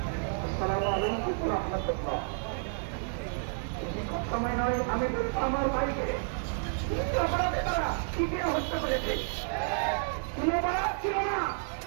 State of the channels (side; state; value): left; silent; digital silence